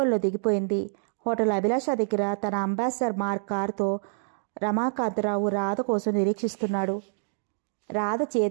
దిగిపోయింది. హోటల్ అభిలాష దగ్గర తన అంబాసిడర్ మార్క్ కారుతో రమాకాంతరావు రాధ కోసం నిరీక్షిస్తున్నాడు. రాధ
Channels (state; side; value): silent; left; digital silence